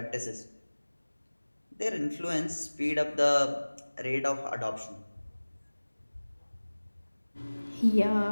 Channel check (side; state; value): both; inverted; correlation -1.00